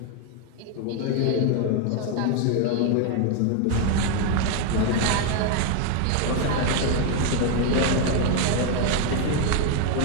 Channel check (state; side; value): different; both; correlation 0.01